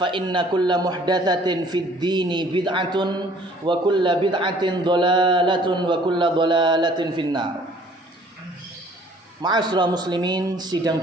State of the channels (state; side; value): normal; both; correlation 0.56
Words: inna kulla muhdatsatin fid dini bid'atun wa kulla bid'atin dhalalatun wa kulla dhalalatin finnar. Ma'asyiral muslimin, sidang